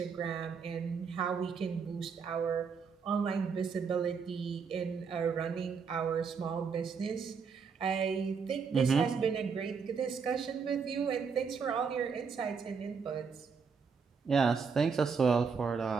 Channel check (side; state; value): left; quieter; 5.7 dB